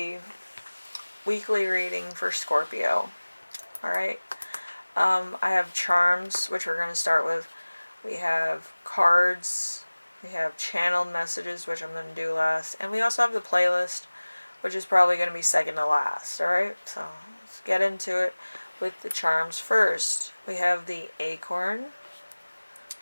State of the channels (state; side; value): inverted; both; correlation -1.00